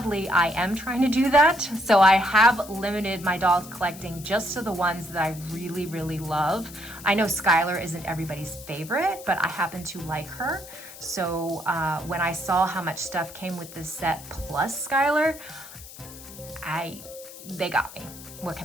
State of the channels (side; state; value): left; noise; hiss, 16 dB below the sound